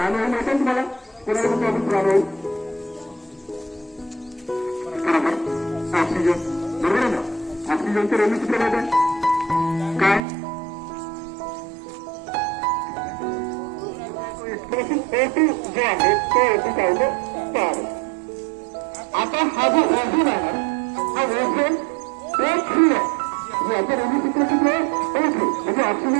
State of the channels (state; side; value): drops out; left; at 10.2 s